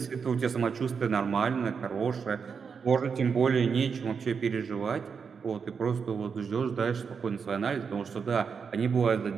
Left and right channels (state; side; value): quieter; left; 6.0 dB